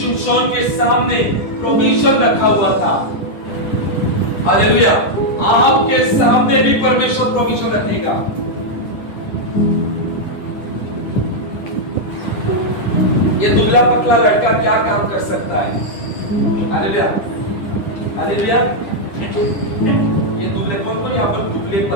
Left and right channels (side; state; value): right; late; 10 ms